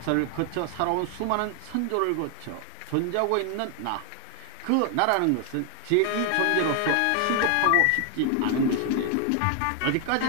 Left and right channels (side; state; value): both; different; correlation 0.00